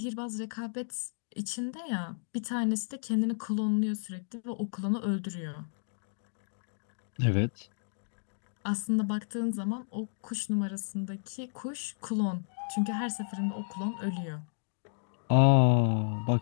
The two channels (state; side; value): silent; right; digital silence